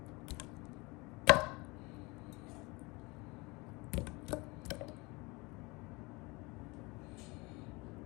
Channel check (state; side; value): quieter; right; 25.5 dB